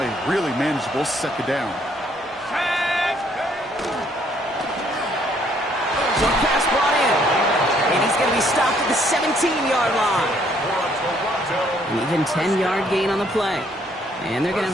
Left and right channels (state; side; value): normal; both; correlation 0.66